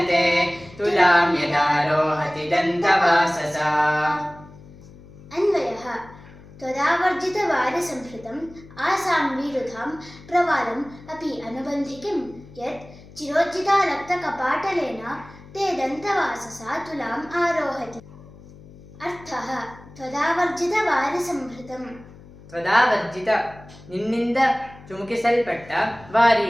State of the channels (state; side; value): noise; left; hum, 20 dB below the sound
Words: ते तुलां यदारोहति दन्तवाससा। अन्वयः त्वदावर्जितवारिसंहृतम् आसां विरुधां प्रवालम् अपि अनुबन्धिकिं यत् चिरोज्जितालक्तकपाटलेन ते दन्तवाससा तुलाम् आरोहति। अर्थः त्वदावर्जितवारिसंहृतम् ತ್ವದಾವರ್ಜಿತ ನಿನ್ನಿಂದ ಚುಮುಕಿಸಲ್ಪಟ್ಟ ವಾರಿ